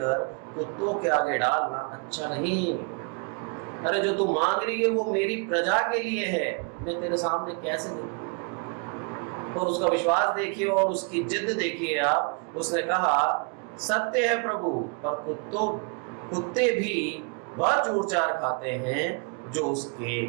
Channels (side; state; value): left; quieter; 36.1 dB